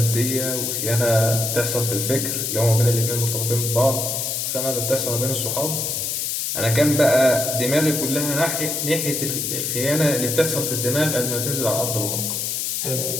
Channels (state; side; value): noise; left; hiss, 1 dB below the sound